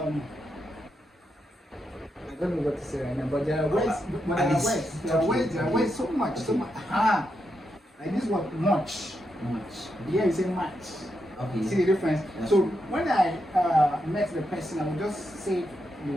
don't know what to say right now, but there are words. There are words so much. Like this word much. Here you say much. Okay. See the difference? That's so true. when I met the person, I would just say it the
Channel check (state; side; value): normal; both; correlation 0.83